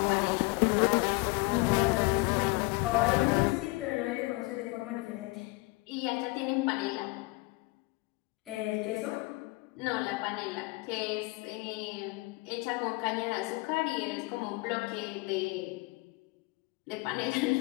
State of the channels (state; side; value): quieter; right; 24.3 dB